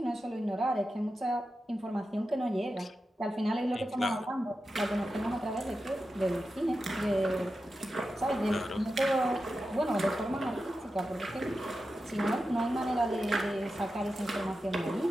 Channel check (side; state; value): both; normal; correlation 0.91